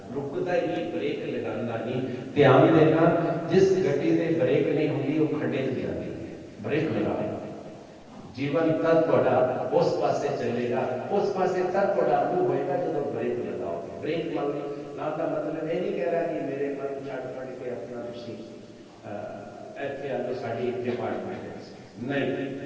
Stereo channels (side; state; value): both; identical; correlation 1.00